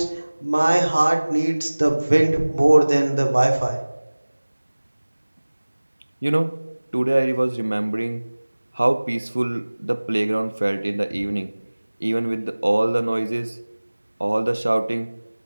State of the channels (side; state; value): both; inverted; correlation -1.00